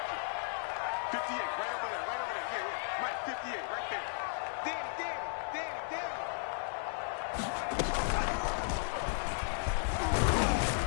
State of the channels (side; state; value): right; silent; digital silence